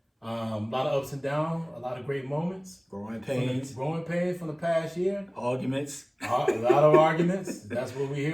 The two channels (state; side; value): identical; both; correlation 1.00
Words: A lot of ups and downs, a lot of great moments. Growing pains from the past year. Arguments. A lot of arguments. That's what we're